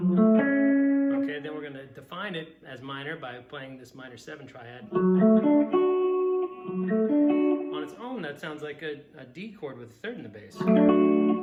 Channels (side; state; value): both; identical; correlation 1.00